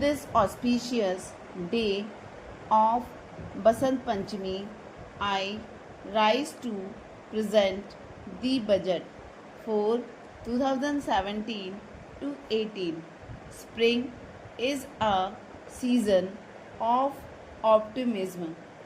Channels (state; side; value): identical; both; correlation 1.00